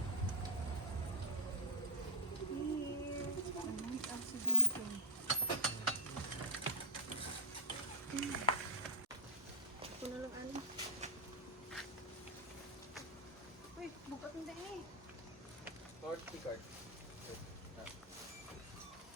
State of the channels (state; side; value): normal; both; correlation -0.13